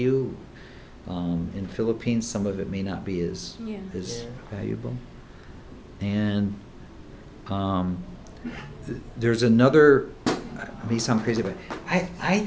In Philippines, some of it may not be as Yeah. valuable. And there's another, I may sound crazy, but I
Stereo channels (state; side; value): identical; both; correlation 1.00